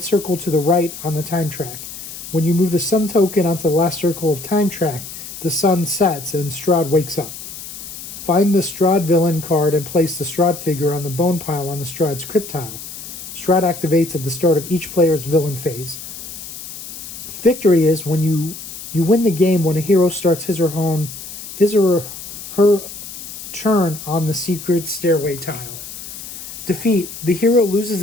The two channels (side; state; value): left; noise; hiss, 11 dB below the sound